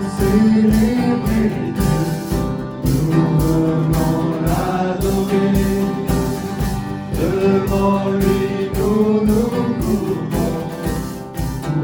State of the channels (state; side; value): identical; both; correlation 1.00